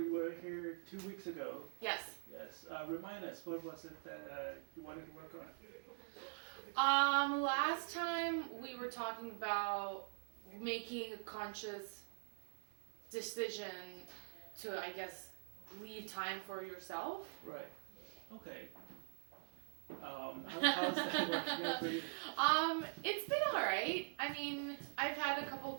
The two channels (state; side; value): silent; left; digital silence